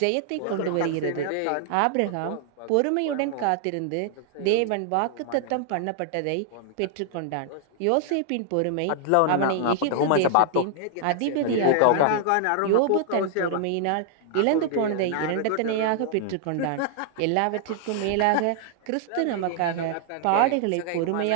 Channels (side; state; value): both; different; correlation -0.01